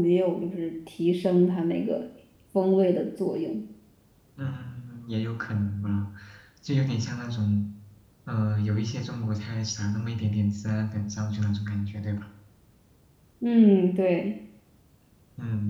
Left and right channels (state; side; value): identical; both; correlation 1.00